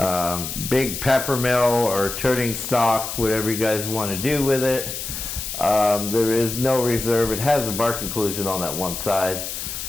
Big peppermill or turning stock, whatever you guys want to do with it. There is no reserve. It has a bar conclusion on that one side,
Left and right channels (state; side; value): noise; left; hiss, 6 dB below the sound